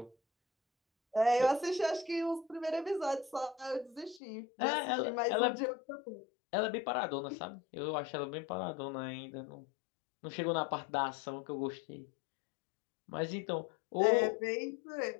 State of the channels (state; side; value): drops out; right; at 4.2 s